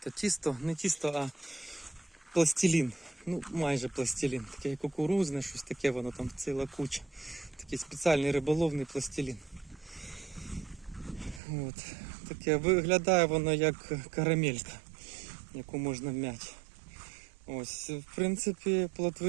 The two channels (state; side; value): drops out; left; at 11.4 s